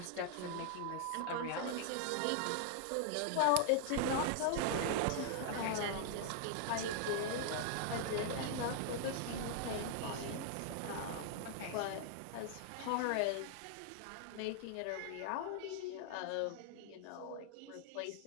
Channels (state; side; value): different; both; correlation 0.00